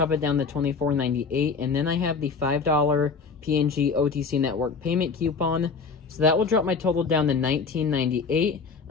it down to $24.98. And then I have the $5 P&G OTC Network payment coupon. So that will drop my total down to $19.98.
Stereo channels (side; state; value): right; quieter; 5.0 dB